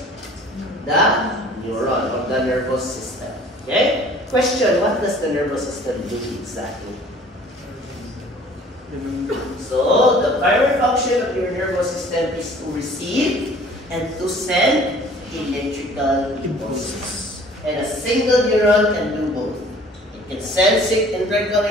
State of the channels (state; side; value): normal; both; correlation 0.51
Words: the neuron of the nervous system. Okay? Question, what does the nervous system do exactly? So, the primary function of your nervous system is to receive and to send electrical impulses. And a single neuron can do both. It can send electrical